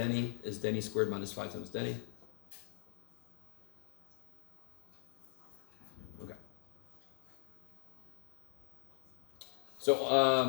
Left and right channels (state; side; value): silent; right; digital silence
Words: is Denny squared minus 5 times Denny. Okay.